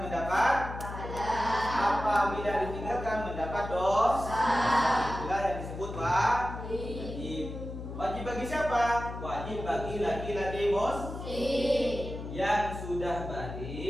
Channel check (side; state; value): left; noise; hum, 9 dB below the sound